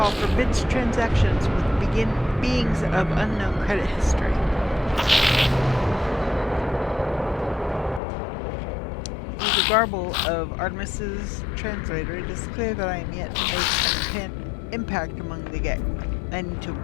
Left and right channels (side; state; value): right; drops out; at 8.0 s